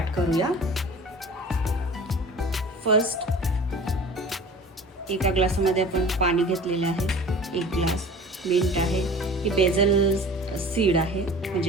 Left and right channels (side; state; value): both; normal; correlation 0.41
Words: करूया. फर्स्ट एका ग्लासामध्ये आपण पाणी घेतलेलं आहे. 1 ग्लास मिंट आहे. ही बेजल सीड आहे,